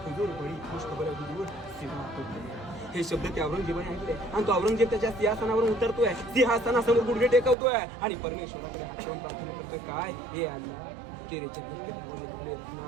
हुजूर बडी खुश खबर आहे हुजूर, हे शब्द त्या औरंगजेबाने ऐकले आणि तो औरंगजेब त्याच्या सिंहासनावरून उतरतोय, सिंहासनासमोर गुडघे टेकवतोय आणि परमेश्वराकडे हात ठेवून प्रार्थना करतोय. काय हे अल्लाह तेरे जगत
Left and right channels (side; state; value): left; drops out; at 7.6 s